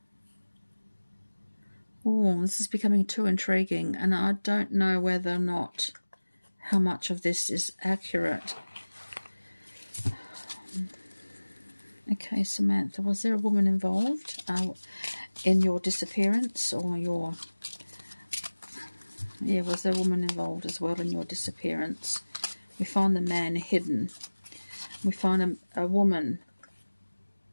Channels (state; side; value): inverted; both; correlation -1.00